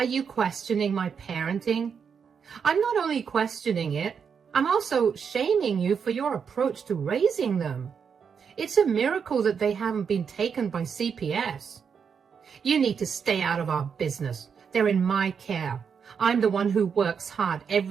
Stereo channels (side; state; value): left; quieter; 6.6 dB